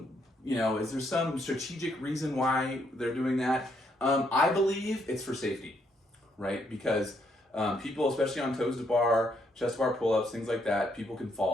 strategic reason why they're doing that? I believe it's for safety, right? Because people, especially on toes to bar, chest to bar pull-ups, things like that, people can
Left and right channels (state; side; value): normal; both; correlation 0.73